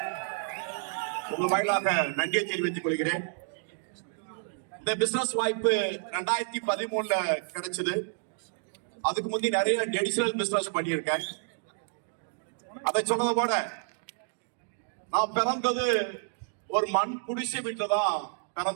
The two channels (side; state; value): left; silent; digital silence